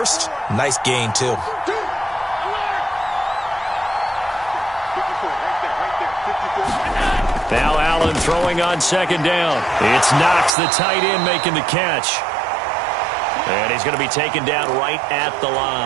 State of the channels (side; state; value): left; drops out; at 10.6 s